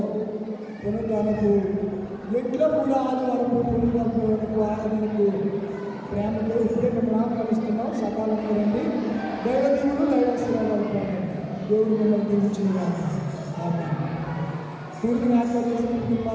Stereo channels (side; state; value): both; identical; correlation 1.00